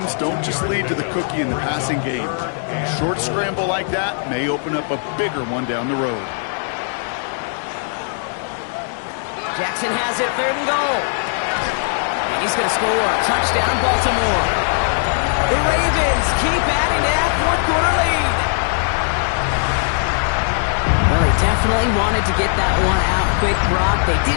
don't just lead to the cookie in the passing game. A short scramble like that may open up a bigger one down the road. Jackson has it, 3rd and goal. He's going to score. Touchdown, Baltimore. The Ravens keep adding to that fourth-quarter lead. Well, they definitely wanted to get that one out quick, Brock. They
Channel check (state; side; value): silent; right; 66 dB below the other